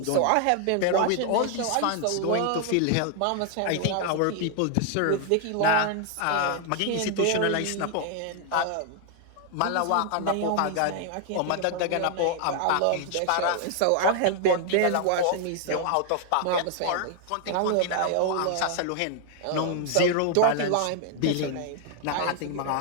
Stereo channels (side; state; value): both; different; correlation 0.00